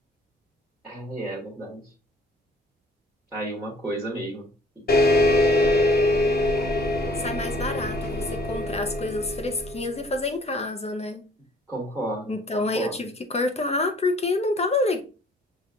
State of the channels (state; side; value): normal; both; correlation 0.56